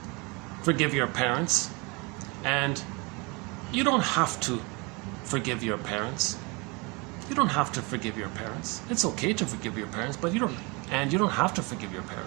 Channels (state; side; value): quieter; left; 28.4 dB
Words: forgive your parents and you don't have to forgive your parents. You don't have to forgive your parents. It's okay to forgive your parents, but you don't have to forgive your